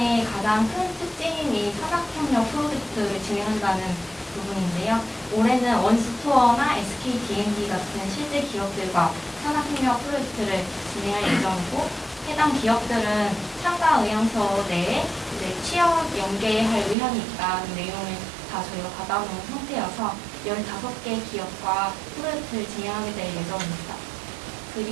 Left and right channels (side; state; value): left; drops out; at 16.9 s